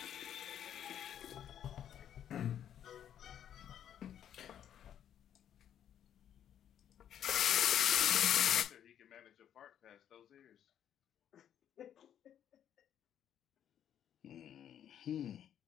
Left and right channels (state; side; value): quieter; right; 9.9 dB